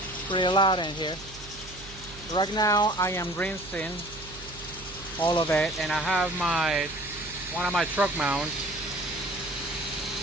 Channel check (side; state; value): right; noise; hum, 17 dB below the sound